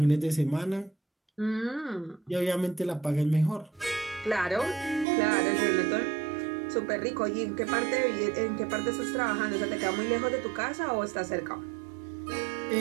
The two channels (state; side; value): drops out; left; at 5.1 s